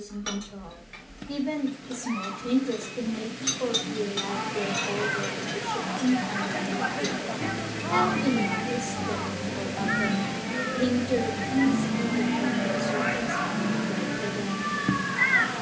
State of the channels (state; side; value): identical; both; correlation 1.00